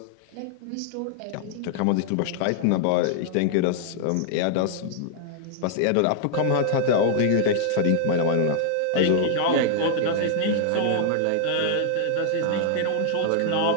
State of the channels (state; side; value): different; both; correlation 0.00